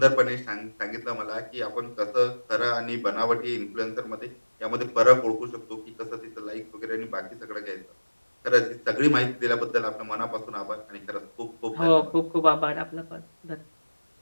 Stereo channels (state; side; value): inverted; both; correlation -1.00